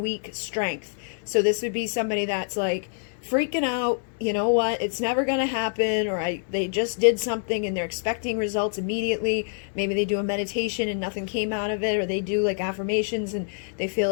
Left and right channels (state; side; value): silent; right; digital silence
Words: strength. So this would be somebody that's like freaking out, you know what, it's never going to happen, or they just did something and they're expecting results immediately. Maybe they do a meditation and nothing came out of it, or they do like affirmations and they feel